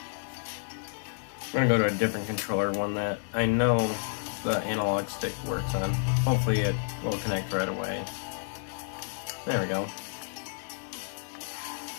We're gonna go to a different controller, one that I know the analog stick works on. Hopefully it will connect right away. There we go.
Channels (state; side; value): silent; right; digital silence